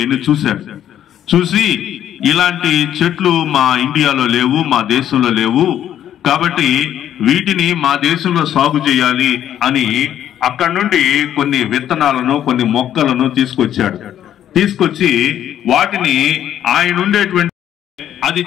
చూసి ఇలాంటి చెట్లు మా ఇండియాలో లేవు, మా దేశంలో లేవు, కాబట్టి వీటిని మా దేశంలో సాగు చేయాలి అని అక్కడి నుండి కొన్ని విత్తనాలను కొన్ని మొక్కలను తీసుకొచ్చి వాటిని ఆయన ఉండేటువంటి అది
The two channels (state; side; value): quieter; right; 10.8 dB